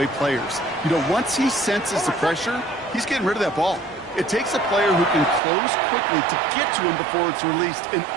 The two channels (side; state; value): left; drops out; at 5.4 s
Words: players. You know, once he senses the pressure, he's getting rid of that ball. It takes a player who can close quickly to get to him before it's released and